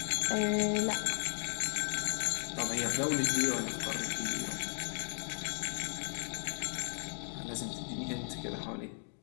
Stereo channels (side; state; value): right; silent; 54 dB below the other